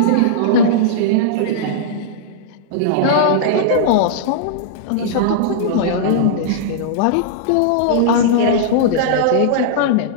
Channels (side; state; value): both; different; correlation -0.02